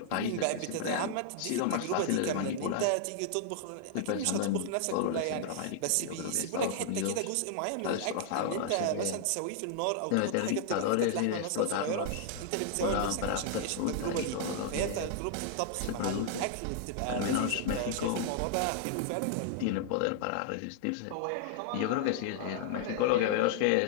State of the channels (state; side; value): different; both; correlation -0.01